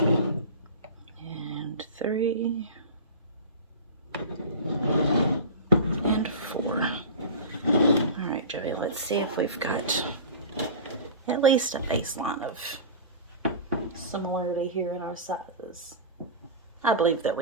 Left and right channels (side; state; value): both; inverted; correlation -0.31